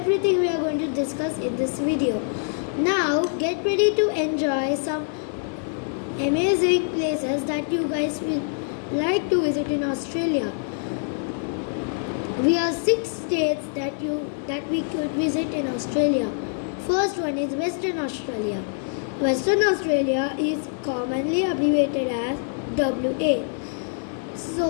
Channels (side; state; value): right; silent; 59 dB below the other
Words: we are going to discuss in this video. Now get ready to enjoy some amazing places that you guys will like to visit in Australia. We have 6 states that we could visit in Australia. First one is Western Australia. Western Australia is commonly abbreviated as WA.